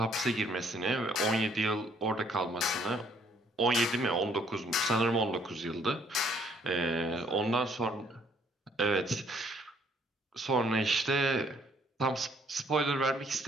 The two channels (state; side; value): normal; both; correlation 0.65